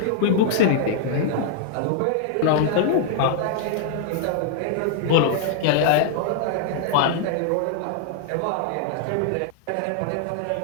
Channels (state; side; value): different; both; correlation -0.01